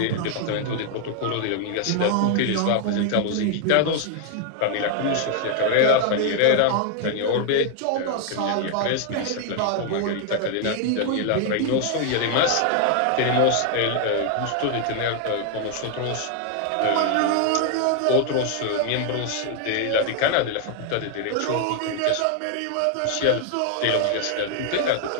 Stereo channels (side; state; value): both; different; correlation 0.00